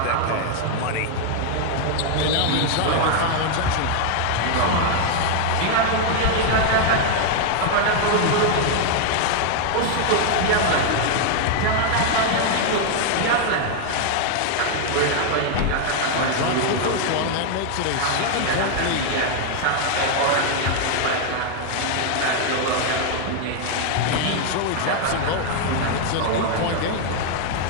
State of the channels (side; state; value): both; different; correlation 0.00